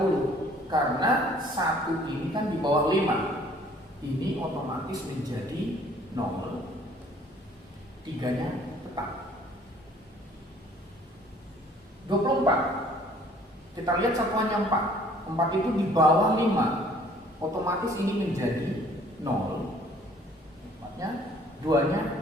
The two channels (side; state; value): both; normal; correlation 0.56